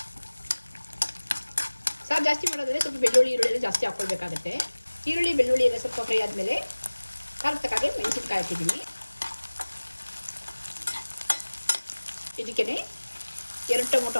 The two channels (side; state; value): both; inverted; correlation -1.00